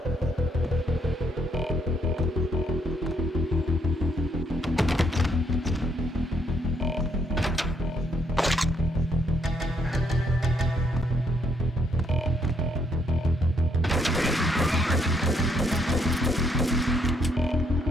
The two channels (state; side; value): normal; both; correlation 0.71